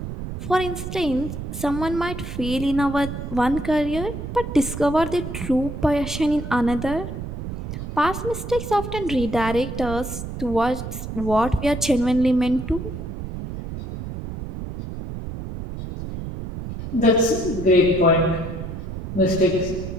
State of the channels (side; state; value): right; noise; rumble, 7 dB below the sound